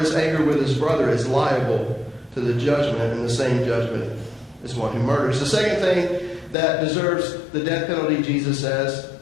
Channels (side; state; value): right; drops out; at 6.6 s